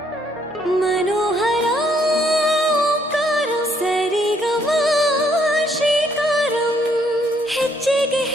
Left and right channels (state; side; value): normal; both; correlation 0.69